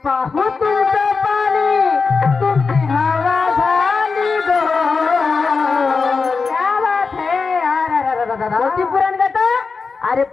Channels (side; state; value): right; quieter; 4.7 dB